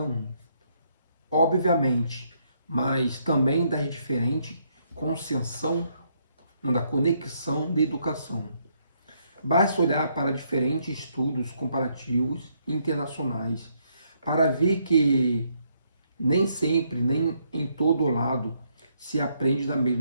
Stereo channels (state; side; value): inverted; both; correlation -0.73